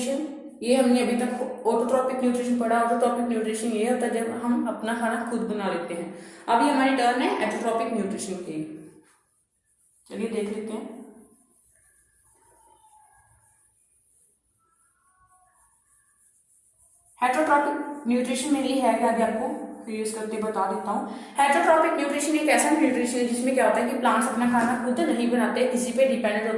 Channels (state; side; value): identical; both; correlation 1.00